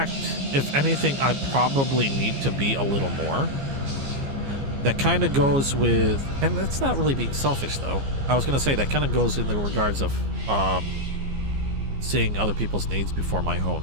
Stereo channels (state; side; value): late; left; 15 ms